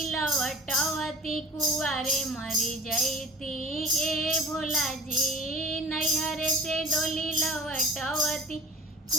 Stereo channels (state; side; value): normal; both; correlation 0.43